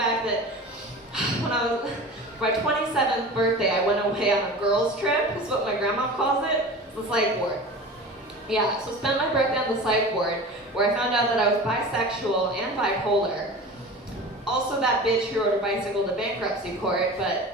that when I was, my 27th birthday, I went away on a girls' trip, is what my grandma calls it. It's the psych ward. Yeah, so spent my birthday on the psych ward, where I found out that I was bisexual and bipolar. Also that bitch who rode a bicycle to bankruptcy court,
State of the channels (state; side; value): normal; both; correlation 0.35